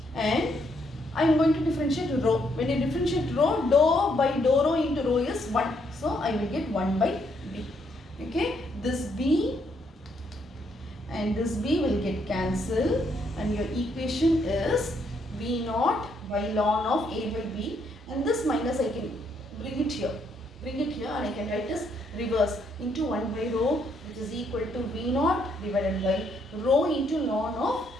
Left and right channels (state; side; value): normal; both; correlation 0.73